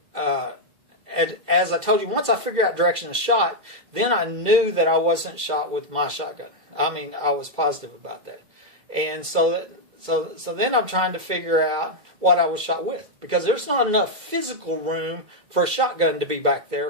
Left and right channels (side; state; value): left; late; 2.0 ms